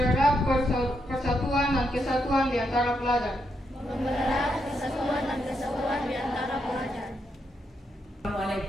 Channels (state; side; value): normal; both; correlation 0.81